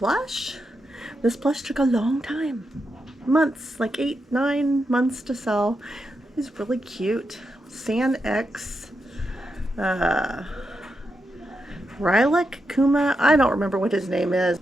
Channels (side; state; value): both; normal; correlation 0.86